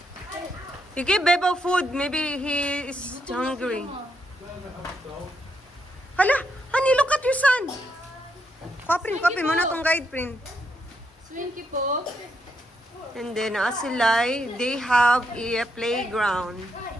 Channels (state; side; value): normal; both; correlation 0.79